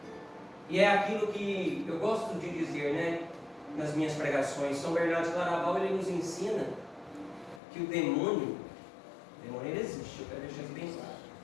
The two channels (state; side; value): drops out; right; at 7.6 s